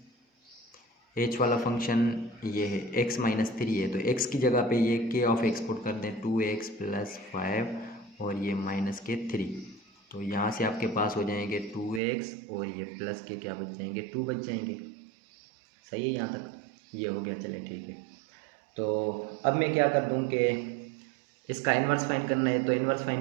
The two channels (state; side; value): drops out; left; at 12.0 s